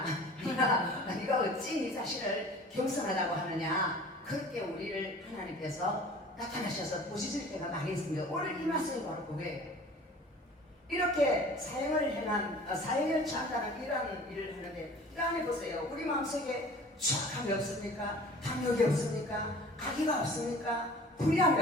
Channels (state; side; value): normal; both; correlation 0.45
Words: 네가 어찌 네 자신을 겸손하다고 하느냐 그렇게 우리를 하나님께서 나타나셔서 보시질 때가 많이 있습니다. 오늘 이 말씀이 바로 그거예요. 이렇게 사형을 취한다는 이런 일을 하는데 이 안에 보세요. 우리 마음속에 추악함이 없습니까? 탐욕이 없습니까? 악의가 없습니까? 불의함이